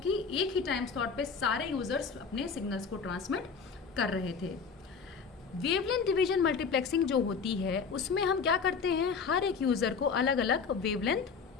एक ही टाइम स्लॉट पे सारे यूजर्स अपने सिग्नल्स को ट्रांसमिट कर रहे थे। वेवलेंथ डिवीजन मल्टीप्लेक्सिंग जो होती है उसमें हम क्या करते हैं, हर एक यूजर को अलग अलग वेवलेंथ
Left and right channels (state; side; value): quieter; right; 5.6 dB